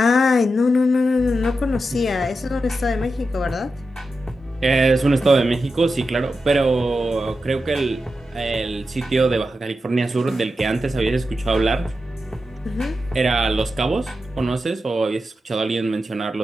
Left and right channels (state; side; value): normal; both; correlation 0.89